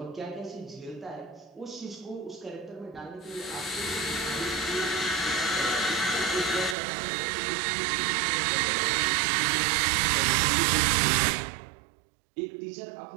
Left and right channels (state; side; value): drops out; left; at 6.8 s